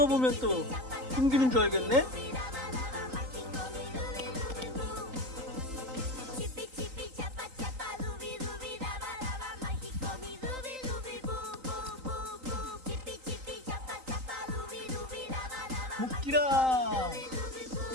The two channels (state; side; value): late; left; 3.9 ms